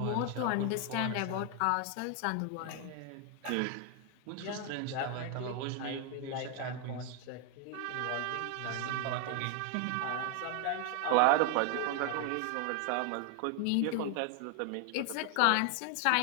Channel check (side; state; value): both; different; correlation 0.01